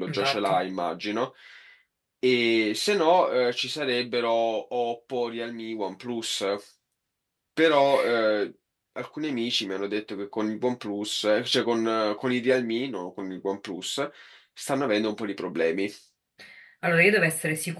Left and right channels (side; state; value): both; identical; correlation 1.00